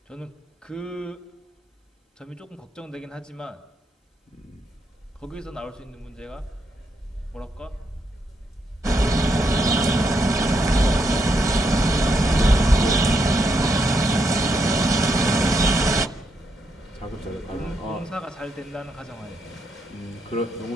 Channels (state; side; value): normal; both; correlation 0.79